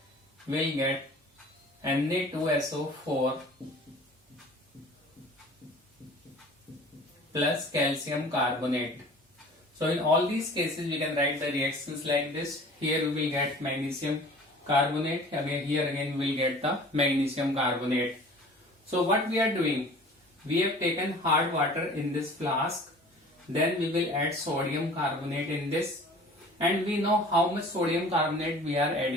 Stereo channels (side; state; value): both; normal; correlation 0.45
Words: will get Na2SO4 plus calcium carbonate. So in all these cases we can write the reactions like this. Here we will get magnesium carbonate, again here again we will get the magnesium carbonate. So what we are doing, we have taken hard water in this flask, then we will add sodium carbonate in this, and we know how much sodium carbonate we are